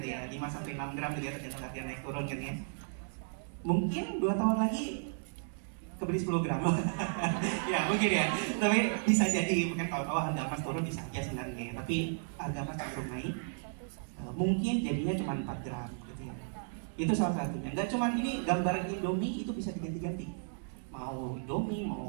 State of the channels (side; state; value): left; silent; digital silence